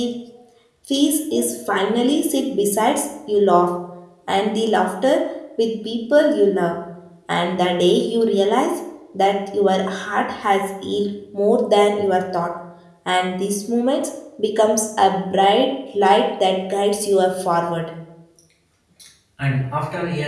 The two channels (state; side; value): identical; both; correlation 1.00